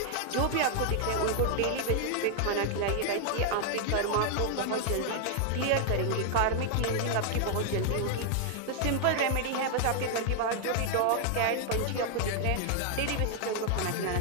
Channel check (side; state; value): both; different; correlation 0.00